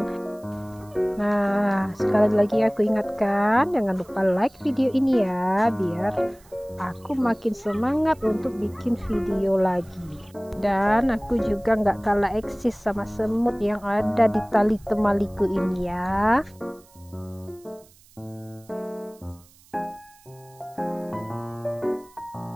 Nah, sekali lagi aku ingatkan, jangan lupa like video ini ya, biar aku makin semangat untuk bikin video lagi. Dan aku juga nggak kalah eksis sama semut yang ada di tali temaliku ini ya.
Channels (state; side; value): noise; right; hiss, 28 dB below the sound